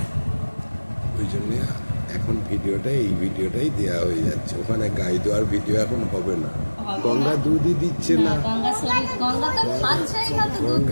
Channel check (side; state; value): both; inverted; correlation -1.00